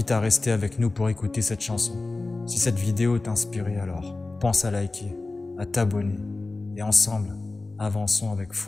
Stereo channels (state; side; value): quieter; right; 3.3 dB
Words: à rester avec nous pour écouter cette chanson. Si cette vidéo t'a inspiré, alors pense à liker, à t'abonner. Et ensemble, avançons avec